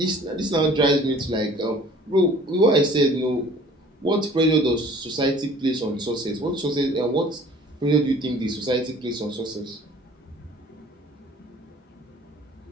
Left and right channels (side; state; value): both; normal; correlation 0.50